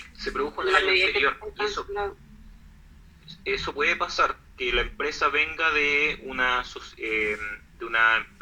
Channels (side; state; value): both; identical; correlation 1.00